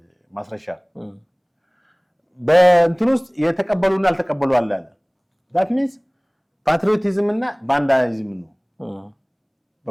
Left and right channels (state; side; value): identical; both; correlation 1.00